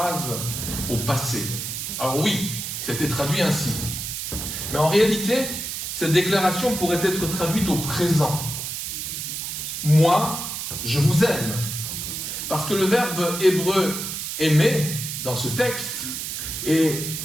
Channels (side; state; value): right; noise; hiss, 5 dB below the sound